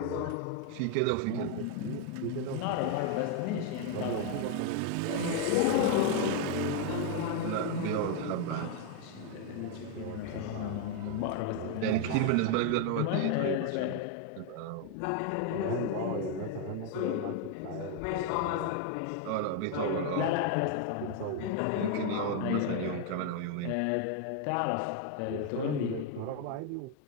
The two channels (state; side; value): different; both; correlation 0.01